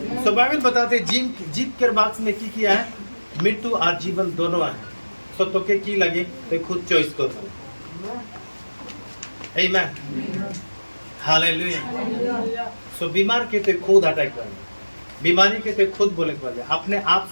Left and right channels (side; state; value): both; inverted; correlation -1.00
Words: सो बाइबल बताते जीत के बॉक्स में की किया है, मृत्यु और जीवन दोनों है, सो तो के की लगे तो खुद चॉइस करो। आमीन, हालेलुया। सो बीमार के तो खुद अटैक कर, बीमारी के तो खुद बोले कर, अपने आप